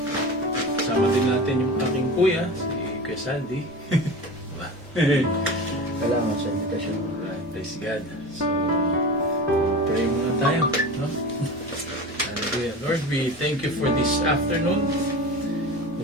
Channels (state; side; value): normal; both; correlation 0.31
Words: sama din natin yung aking kuya, si Kuya Sandy. Salamat sa invitation. Praise God. So, pray muna tayo. No? Hallelujah. Lord, we thank you for this afternoon.